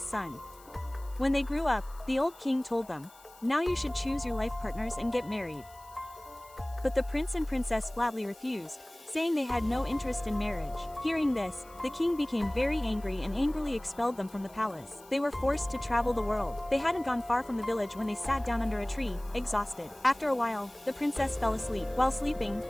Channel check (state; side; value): noise; left; hiss, 24 dB below the sound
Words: son. When they grew up, the old king told them, "Now you should choose your life partners and get married." But the prince and princess flatly refused, saying they had no interest in marriage. Hearing this, the king became very angry and angrily expelled them from the palace. They were forced to travel the world. They hadn't gone far from the village when they sat down under a tree, exhausted. After a while, the princess fell asleep. While sleeping,